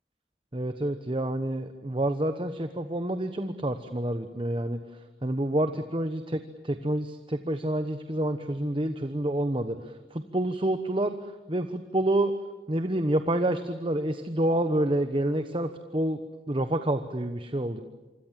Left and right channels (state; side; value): normal; both; correlation 0.70